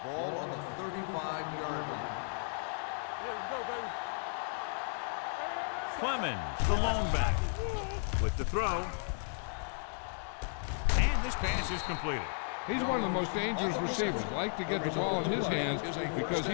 Ball on the 35-yard line. Yeah, let's go, baby. Clemens, the lone back, with the throw. And this pass is completed. He's one of the most dangerous receivers. Like to get the ball in his hands because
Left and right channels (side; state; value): right; silent; 55 dB below the other